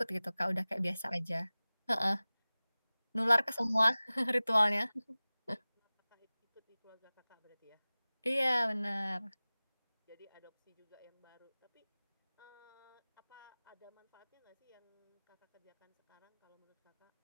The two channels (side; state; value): both; inverted; correlation -0.99